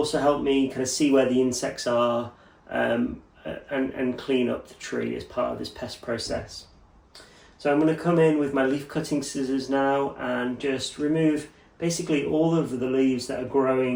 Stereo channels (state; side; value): identical; both; correlation 1.00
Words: help me kind of see where the insects are and clean up the tree as part of this pest process. So I'm going to come in with my leaf cutting scissors now and just remove basically all of the leaves that are